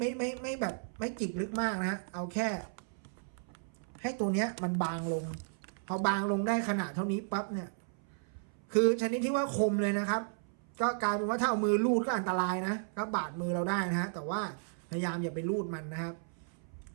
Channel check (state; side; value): silent; left; 55 dB below the other